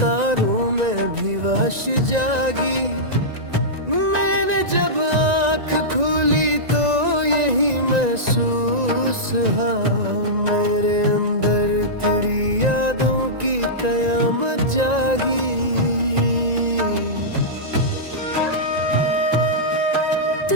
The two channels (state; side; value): late; left; 1.9 ms